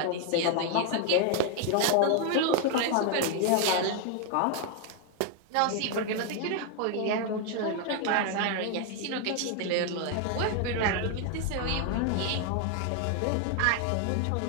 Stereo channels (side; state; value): both; different; correlation 0.00